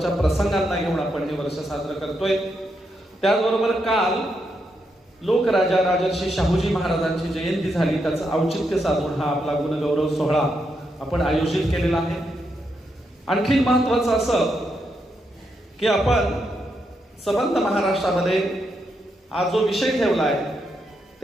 प्रसंगांना घेऊन आपण हे वर्ष साजरं करतोय. त्याचबरोबर काल लोकराजा राजर्षी शाहूजी महाराजांची जयंती झाली, त्याचं औचित्य साधून हा आपला गुणगौरव सोहळा आपण आयोजित केलेला आहे. आणखी महत्वाचं असं की आपण संबंध महाराष्ट्रामध्ये आज जो विषय ठेवलाय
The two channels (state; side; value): normal; both; correlation 0.81